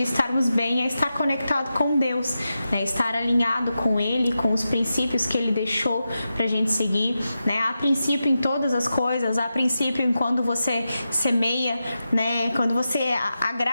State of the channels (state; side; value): inverted; both; correlation -0.90